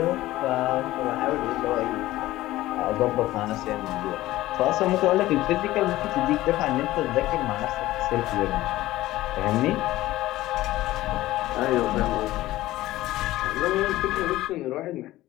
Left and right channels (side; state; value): right; quieter; 16.4 dB